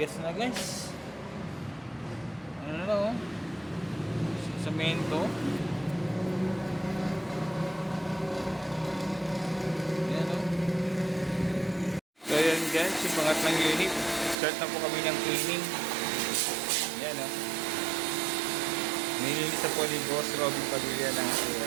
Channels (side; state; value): left; drops out; at 14.4 s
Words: na guys. Ano na oh. Semento. Ayan oh. So yan guys, yung pangatlong unit. Start na po kami ng cleaning. Ayan oh. Nilinis na po ni Boss Robin Padilla ng